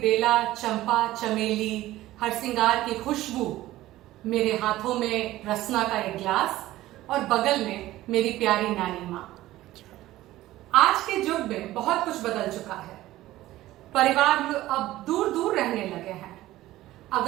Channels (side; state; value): left; quieter; 15.8 dB